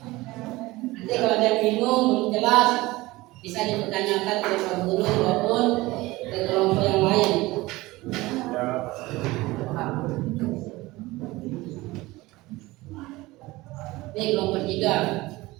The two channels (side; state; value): left; quieter; 20.0 dB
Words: Nanti kalau ada yang bingung belum jelas bisa dipertanyakan ke Pak Guru maupun ke kelompok yang lain. Ini kelompok